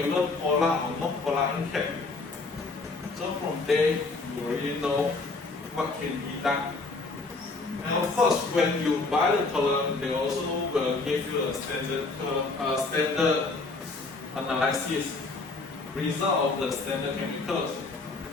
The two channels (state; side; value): quieter; right; 3.7 dB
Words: polar or non-polar NCAP. So from there, you already know what can be done. And of course, when you buy the column, they also will give you a standard analysis result of the standard chemicals.